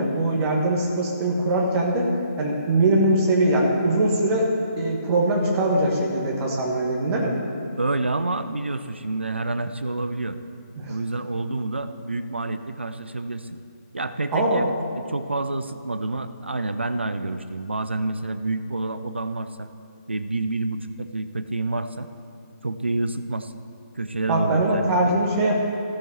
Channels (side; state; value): both; inverted; correlation -0.66